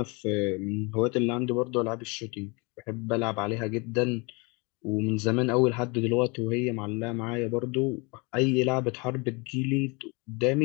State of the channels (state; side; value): quieter; right; 29.1 dB